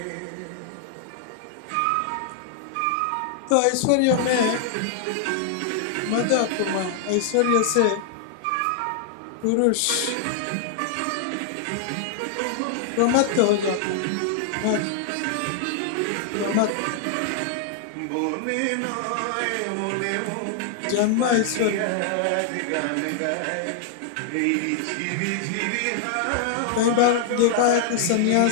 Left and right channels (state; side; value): different; both; correlation 0.00